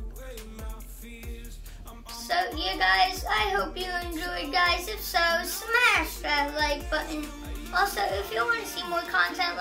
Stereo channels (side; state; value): both; identical; correlation 1.00